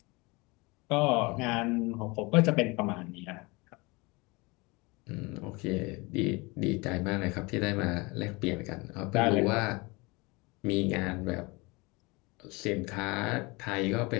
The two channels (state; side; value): quieter; right; 25.7 dB